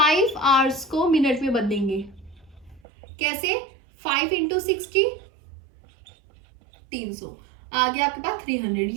आवर्स को मिनट में बदलेंगे। कैसे, 5 इंटू 60, 300 आ गया आपके पास 300।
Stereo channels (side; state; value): left; drops out; at 2.8 s